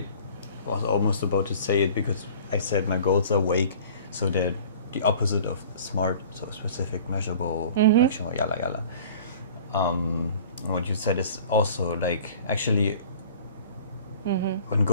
was almost about to say it, because I said my goals are vague, so they're the opposite of smart, so specific, measurable, actionable, yalla yalla. What you said is also like, actually, when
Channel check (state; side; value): inverted; both; correlation -0.46